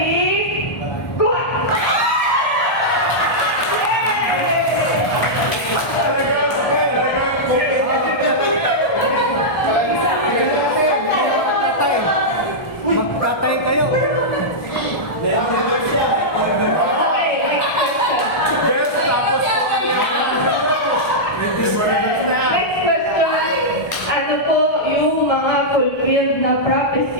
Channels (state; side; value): late; right; 1.3 ms